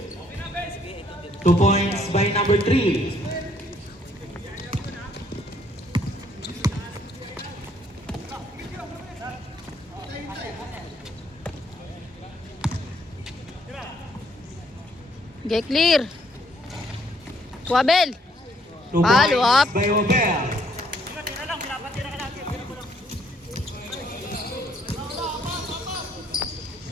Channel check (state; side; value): normal; both; correlation 0.67